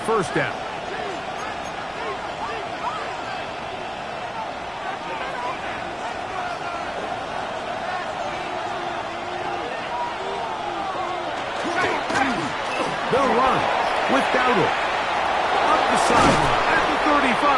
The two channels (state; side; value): identical; both; correlation 1.00